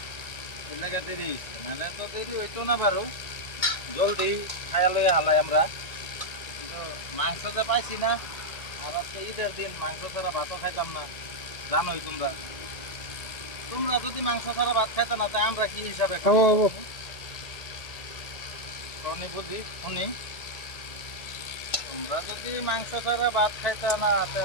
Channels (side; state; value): right; late; 1.8 ms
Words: এর লেগে দেরি হয়েছে নাহলে তো দেরি হইতো না বারো জলদি খাইয়া লইয়া হালাই আমরা কিন্তু মাংস তো পাইছি না আর আজকে ঈদের দিন মাংস ছাড়া ভাতও খাইতাম না জানোই তোমরা তোমরা যদি মাংস ছাড়া ভাত খাইতো না তাই আমরা কি হিসাবে খাবো শুনি বুঝি শুনি তোমরা যদি মাংস ছাড়া ভাত খাইতা না তা